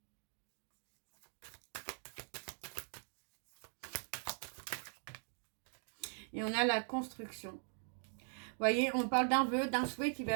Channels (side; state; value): left; silent; 50 dB below the other